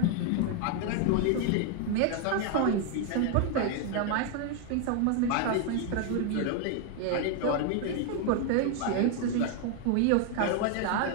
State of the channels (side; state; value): both; different; correlation 0.00